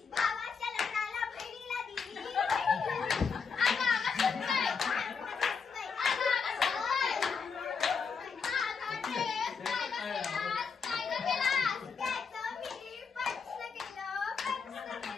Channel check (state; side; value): quieter; right; 5.6 dB